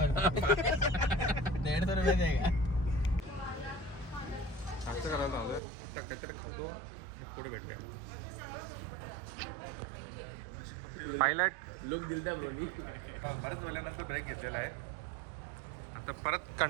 150 रुपये आहे का? असं करायला लावलंय. आता काहीतरी खातो आणि पुढे भेटूया. पायलट लोक दिलता ब्रोनी. बरेच वेळानंतर ब्रेक घेतलेला आहे. आता परत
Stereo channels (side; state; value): left; drops out; at 5.6 s